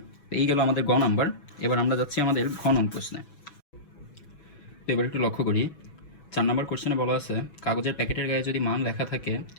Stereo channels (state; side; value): late; right; 6.2 ms